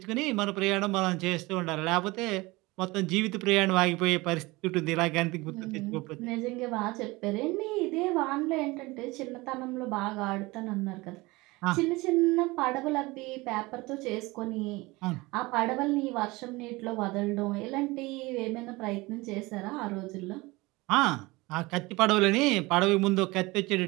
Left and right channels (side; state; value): left; quieter; 22.3 dB